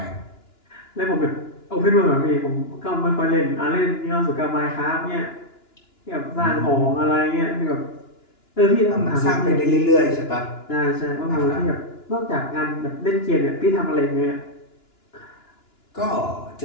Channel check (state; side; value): late; right; 2.9 ms